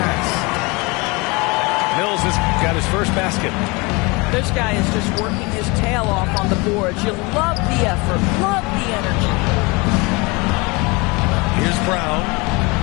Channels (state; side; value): quieter; right; 26.5 dB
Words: Mills has got his his first basket. This guy is just working his tail off on the boards. You love the effort, love the energy. Here's Brown.